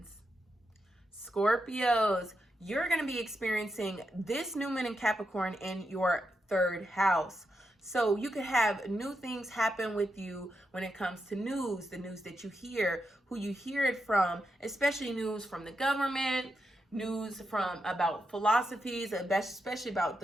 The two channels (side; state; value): both; normal; correlation 0.85